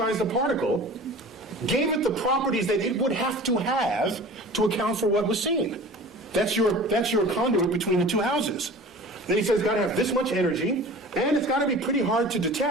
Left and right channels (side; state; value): both; normal; correlation 0.40